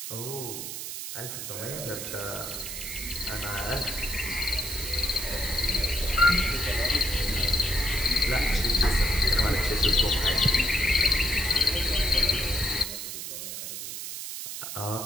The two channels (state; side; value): noise; right; hiss, 7 dB below the sound